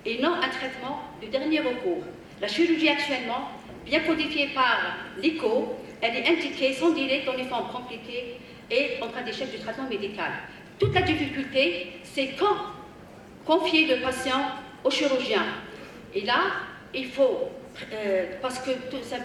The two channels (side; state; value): both; identical; correlation 1.00